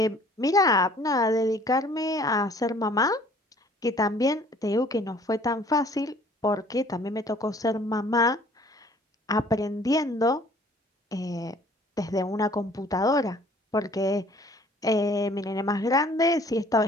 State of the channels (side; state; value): both; normal; correlation 0.55